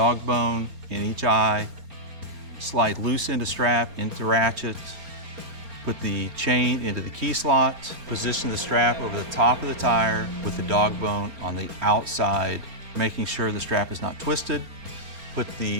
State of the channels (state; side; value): late; left; 4.3 ms